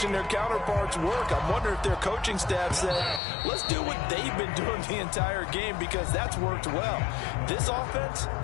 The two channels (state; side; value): drops out; right; at 3.2 s